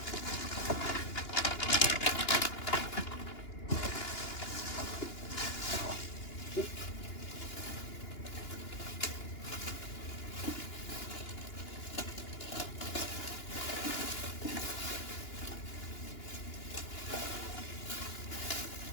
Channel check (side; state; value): right; late; 2.9 ms